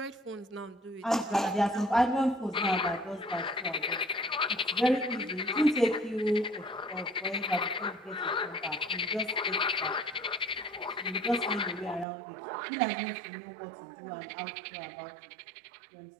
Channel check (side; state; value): left; drops out; at 12.1 s